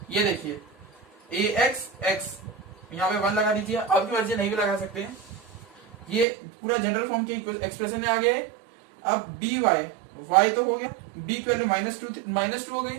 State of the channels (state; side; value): drops out; left; at 6.2 s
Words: ये देखिए ax x, यहाँ पे 1 लगा दीजिए, आपकी मर्जी नहीं भी लगा सकते हैं। ये पूरा जनरल फॉर्म के एक्सप्रेशन में आ गया है। अब dy, y तो हो गया, b की वैल्यू -2 हो गई,